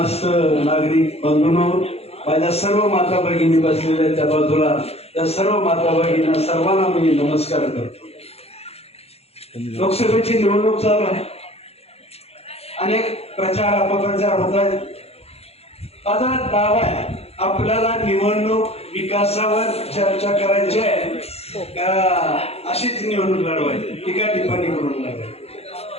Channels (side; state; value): right; late; 0.29 ms